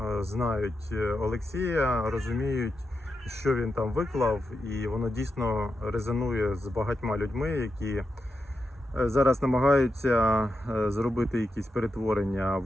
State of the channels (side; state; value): both; normal; correlation 0.87